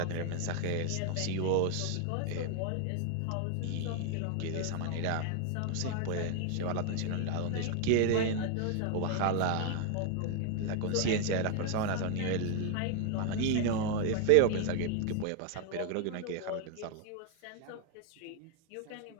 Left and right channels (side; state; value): both; different; correlation 0.01